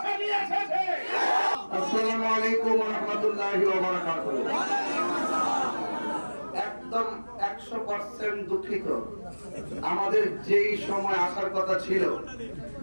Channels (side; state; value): both; inverted; correlation -1.00